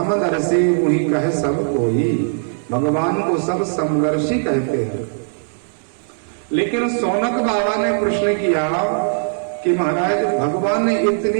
वही कहे सब कोई, भगवान को सब समदर्शी कहते हैं। लेकिन सौनक बाबा ने प्रश्न किया कि महाराज, भगवान ने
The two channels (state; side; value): silent; left; digital silence